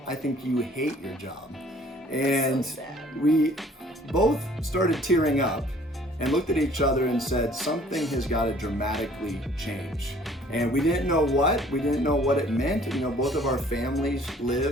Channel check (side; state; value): both; normal; correlation 0.55